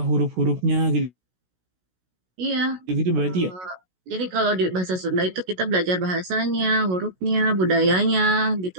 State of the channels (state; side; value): late; left; 16 ms